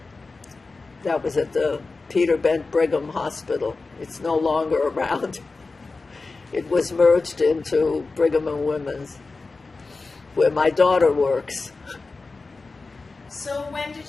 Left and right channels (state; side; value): quieter; right; 3.8 dB